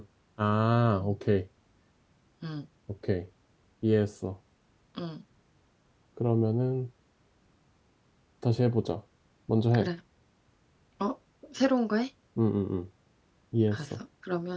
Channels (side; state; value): both; identical; correlation 1.00